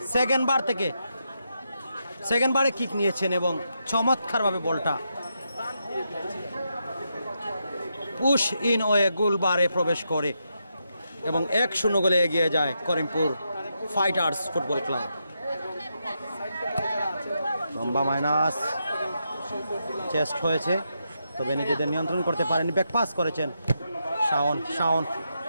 সেকেন্ড বারে কিক নিয়েছেন এবং চমৎকারভাবে বলটা পুশ ইন ওয়ে গোল বারে প্রবেশ করে এবং 1-0 গোলে এগিয়ে যায় করিমপুর ফাইটার্স ফুটবল ক্লাব। লম্বা মাইনাস, চেস্ট হয়েছে, তবে নিজেদের নিয়ন্ত্রণ করতে পারেননি, ব্যাক পাস করেছেন শাওন,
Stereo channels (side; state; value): both; inverted; correlation -0.83